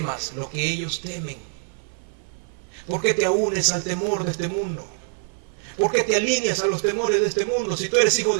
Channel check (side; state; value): left; silent; 58 dB below the other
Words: lo que ellos temen. ¿Por qué te unes al temor de este mundo? ¿Por qué te alineas a los temores de este mundo? Si tú eres hijo